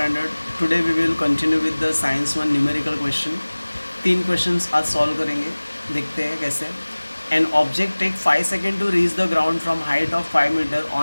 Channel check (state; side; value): inverted; both; correlation -1.00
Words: Today we will continue with the science 1 numerical question. 3 questions आज solve करेंगे, देखते हैं कैसे. An object take 5 seconds to reach the ground from height of 5 meter